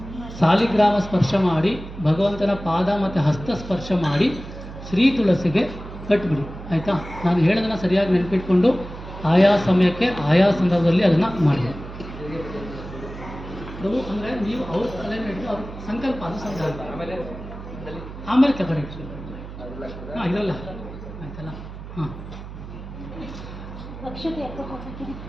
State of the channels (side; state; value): right; noise; hum, 12 dB below the sound